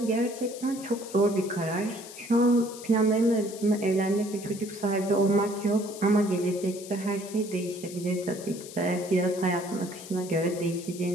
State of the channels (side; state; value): left; noise; hiss, 15 dB below the sound